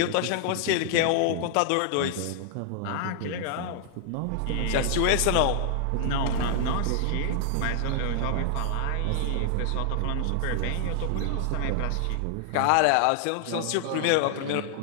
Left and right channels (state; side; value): different; both; correlation 0.00